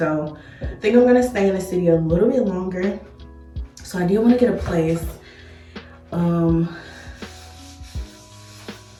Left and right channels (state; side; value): identical; both; correlation 1.00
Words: I think I'm gonna stay in the city a little bit longer. So I did want to get a place.